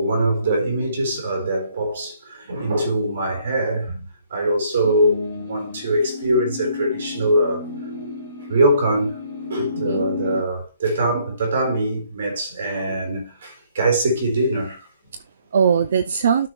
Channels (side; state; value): both; inverted; correlation -0.66